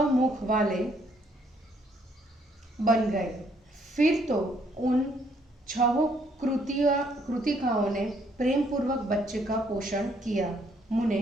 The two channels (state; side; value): normal; both; correlation 0.68